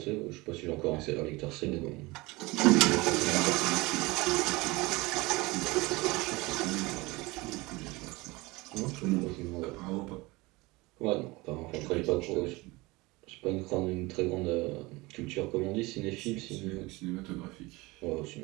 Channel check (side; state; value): left; quieter; 22.7 dB